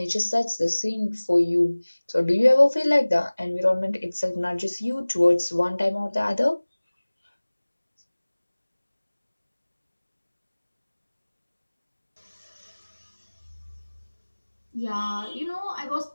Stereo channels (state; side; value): inverted; both; correlation -1.00